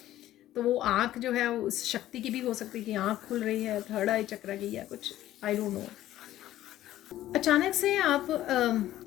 तो वो आँख जो है उस शक्ति की भी हो सकती है कि आँख खुल रही है, थर्ड आई चक्र की या कुछ, आई डोंट नो। अचानक से आप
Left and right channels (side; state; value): right; quieter; 13.8 dB